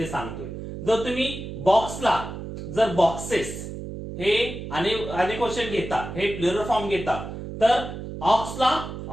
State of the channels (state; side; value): noise; right; hum, 8 dB below the sound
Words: सांगतोय. जर तुम्ही बॉक्सला जर बॉक्सेस हे अनेक वचन घेता, हे प्लुरल फॉर्म घेता, तर ऑक्सला